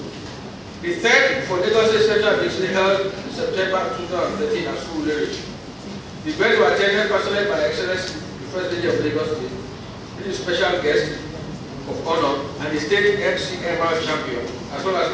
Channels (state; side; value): identical; both; correlation 1.00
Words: The third for Lagos State Central District held in September 2013 at Surulere. The events were attended personally by Excellency the First Lady of Lagos State, with a special guest of honor, and the state MCMR champion, as well as